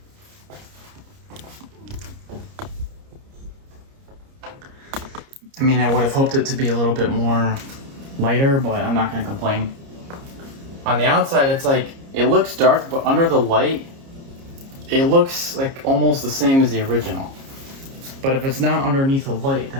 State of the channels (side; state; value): left; late; 30 ms